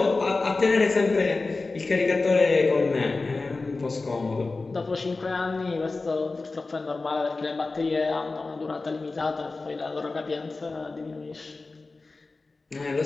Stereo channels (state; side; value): quieter; right; 3.6 dB